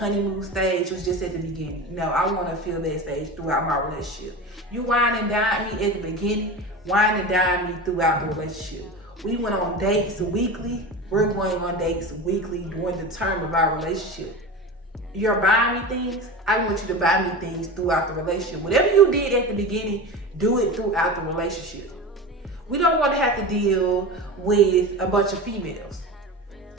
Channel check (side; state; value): both; normal; correlation 0.28